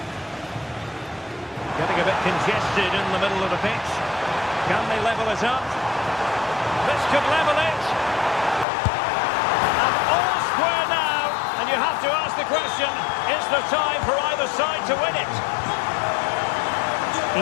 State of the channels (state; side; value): drops out; right; at 8.7 s